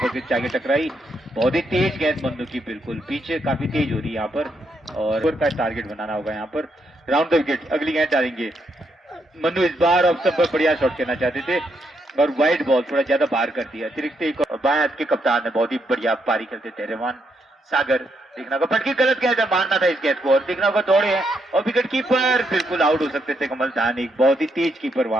पर जाके टकराई। बहुत ही तेज गेंद मन्नू की, बिल्कुल पीछे काफी तेज हो रही है यहाँ पर और का टारगेट बनाना होगा यहाँ पर। राउंड द विकेट, अगली गेंद डालेंगे मन्नू, इस बार ऑफ स्टंप पर बढ़िया शॉट खेलना चाहते थे और वाइड बॉल थोड़ा ज्यादा बाहर कर दिया। अतिरिक्त एक बाएं हाथ के कप्तान है, बहुत ही बढ़िया पारी खेलते थे रहमान सागर। देखना होगा पटकी गलत गेंद है, मारना था इस गेंद को और देखना होगा दौड़े हैं और विकेट कीपर बिल्कुल आउट हो सकते थे कमल धानिक, बहुत ही तेज कीपर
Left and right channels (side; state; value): both; normal; correlation 0.78